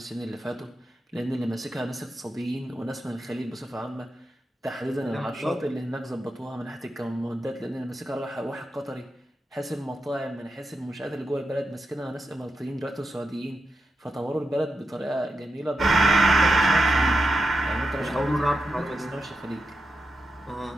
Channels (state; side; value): normal; both; correlation 0.88